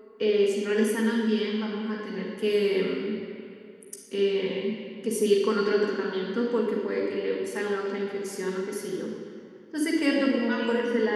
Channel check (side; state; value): both; identical; correlation 1.00